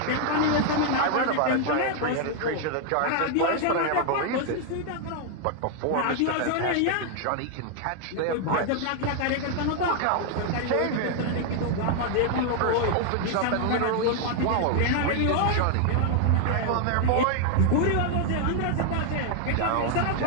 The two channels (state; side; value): different; both; correlation 0.00